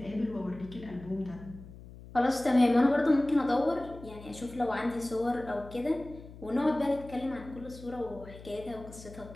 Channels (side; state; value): left; noise; hum, 17 dB below the sound